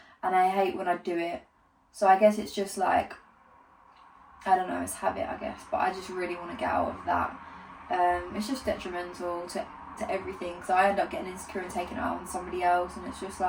and I hate when I do it. So I guess it's just like, I don't know, it's habit, I guess, but I just really want to get out of that. It's just detrimental to everything, so I end up getting insecure and taking it out on somebody else, and it's just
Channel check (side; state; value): both; identical; correlation 1.00